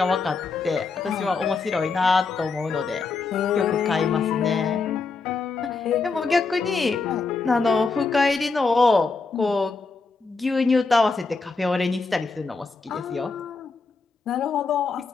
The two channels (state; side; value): quieter; right; 4.3 dB